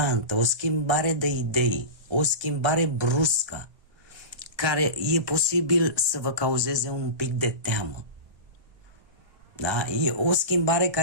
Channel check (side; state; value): left; late; 1.2 ms